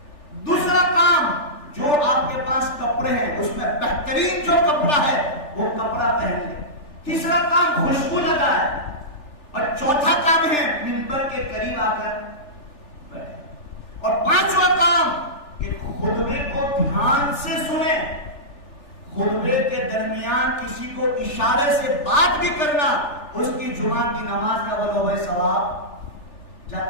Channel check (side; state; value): right; late; 3.4 ms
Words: دوسرا کام، جو آپ کے پاس کپڑے ہیں اس میں بہترین جو کپڑا ہے وہ کپڑا پہن لیں. تیسرا کام خوشبو لگائے. اور چوتھا کام ہے منبر کے قریب آ کر بیٹھے. اور پانچواں کام کہ خطبے کو دھیان سے سنیں. خطبے کے درمیان کسی کو اشارے سے بات بھی کرنا اس کی جمعہ کی نماز کا بولو بھائی ثواب